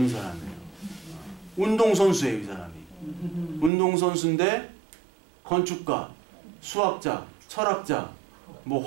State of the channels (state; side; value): drops out; left; at 3.7 s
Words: 사람이에요. 운동선수예요, 이 사람이. 운동선수인데 건축가, 수학자, 철학자, 뭐